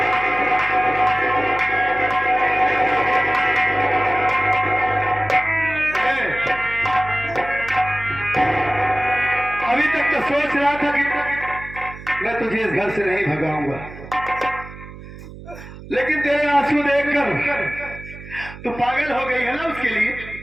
अभी तक तो सोच रहा था कि मैं तुझे इस घर से नहीं भगाऊंगा, लेकिन तेरे आंसू देखकर तू पागल हो गई है ना उसके लिए।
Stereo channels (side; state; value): right; noise; hum, 15 dB below the sound